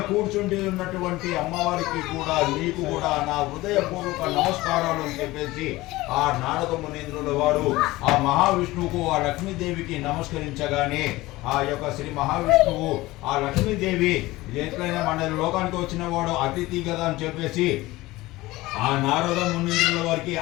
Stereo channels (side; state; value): right; quieter; 19.1 dB